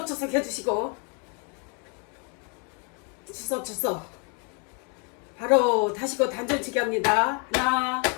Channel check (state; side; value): quieter; right; 36.6 dB